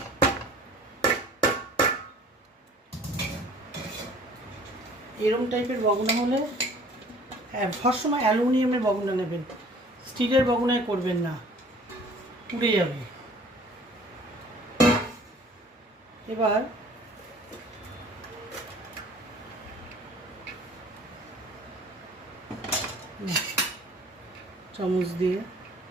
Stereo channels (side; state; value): both; normal; correlation 0.51